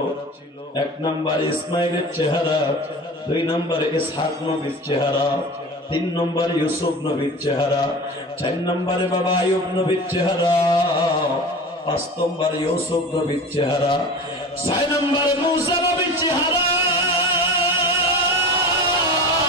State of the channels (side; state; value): both; normal; correlation 0.34